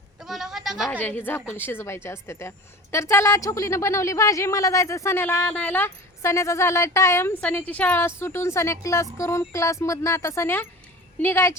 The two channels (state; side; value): normal; both; correlation 0.37